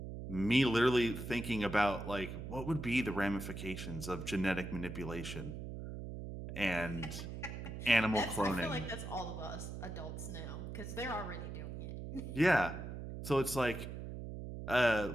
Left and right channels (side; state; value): right; noise; hum, 7 dB below the sound